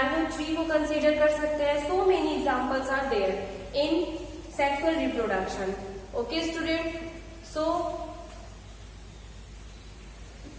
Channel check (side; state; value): both; identical; correlation 1.00